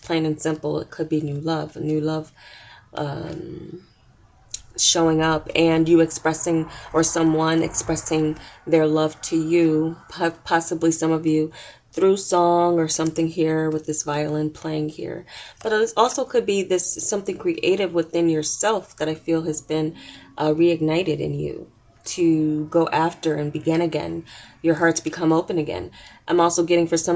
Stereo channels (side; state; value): both; identical; correlation 1.00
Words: plain and simple, it could be new love, a new love showing up, and you expressing, or someone expressing their love to you, possibly some of you through song or something here with this violin playing here. But it also could be this something creative within yourself that I feel has been reignited in you to go after and begin again. Your hearts become open again. I'm also getting, for